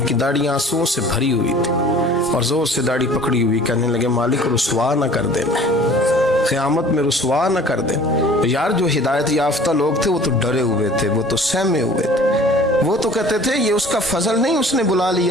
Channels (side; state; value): both; normal; correlation 0.48